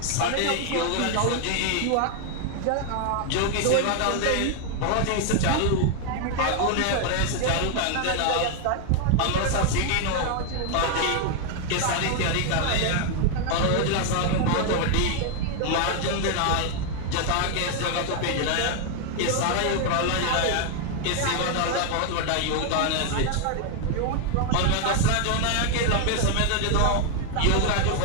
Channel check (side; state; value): both; different; correlation 0.00